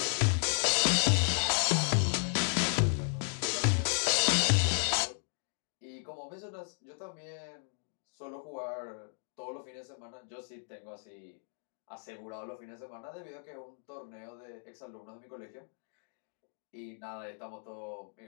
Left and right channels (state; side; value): silent; right; 55 dB below the other